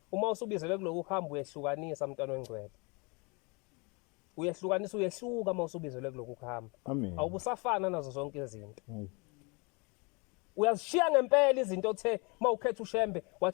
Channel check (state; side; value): quieter; right; 29.9 dB